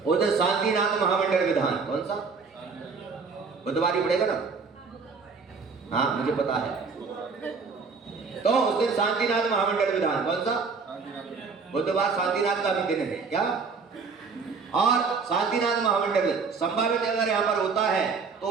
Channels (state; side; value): quieter; left; 5.0 dB